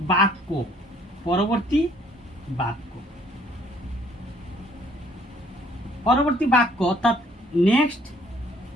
বাক্য, পরবর্তী বাক্য অর্থাৎ নেক্সট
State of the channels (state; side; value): normal; both; correlation 0.62